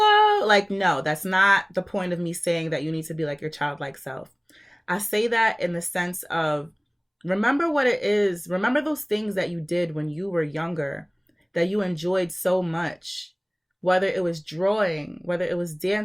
Like, no, that's not the point of me saying that you need to be like your childlike self. I say that in the sense of, remember what it is. Remember those things that you did when you were younger that you enjoyed so much, whether it was drawing, whether it was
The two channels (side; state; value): both; identical; correlation 1.00